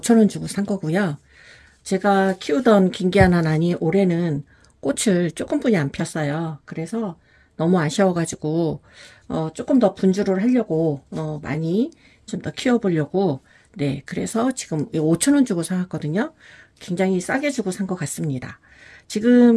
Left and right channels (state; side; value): identical; both; correlation 1.00